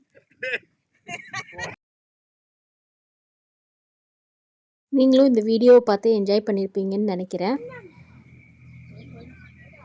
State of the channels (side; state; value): both; identical; correlation 1.00